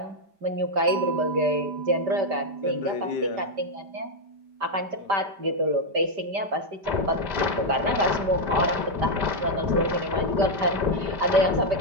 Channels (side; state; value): left; late; 5.1 ms